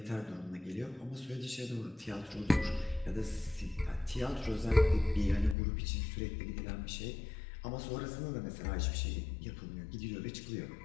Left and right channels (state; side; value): drops out; right; at 5.6 s